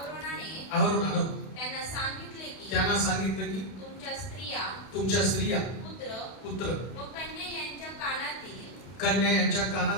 अहरोनानं त्यांना सांगितलं की तुमच्या स्त्रिया पुत्र व कन्या यांच्या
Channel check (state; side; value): late; right; 32 ms